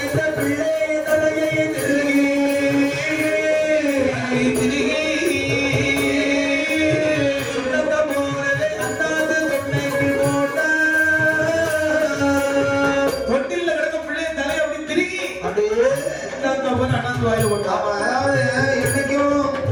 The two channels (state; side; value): identical; both; correlation 1.00